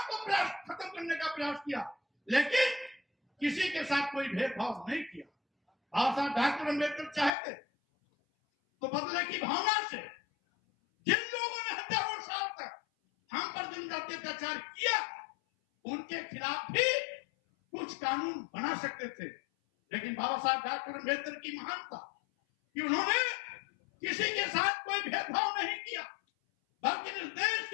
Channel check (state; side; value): drops out; right; at 7.3 s